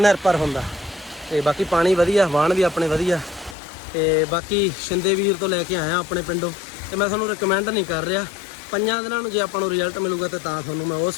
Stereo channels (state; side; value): drops out; right; at 3.6 s